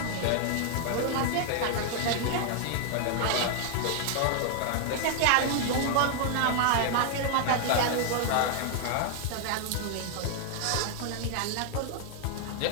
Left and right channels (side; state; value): both; different; correlation 0.00